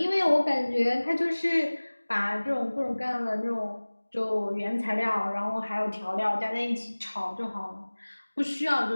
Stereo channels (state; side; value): inverted; both; correlation -1.00